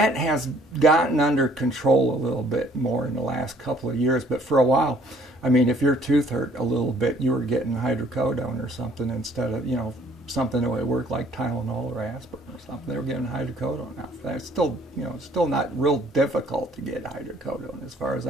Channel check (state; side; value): normal; both; correlation 0.59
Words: has gotten under control a little bit more in the last couple of years, but for a while, I mean, if your tooth hurt a little bit, you were getting hydrocodone or something instead of, something that would work like Tylenol or aspirin or something. They were getting hydrocodone now. That's still, still not real difficult to get hydrocodone as far as